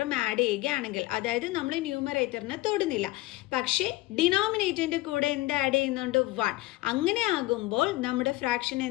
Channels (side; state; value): right; quieter; 18.9 dB